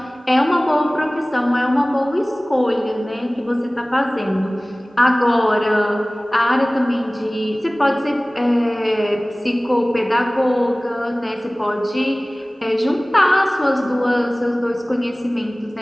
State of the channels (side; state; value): both; normal; correlation 0.98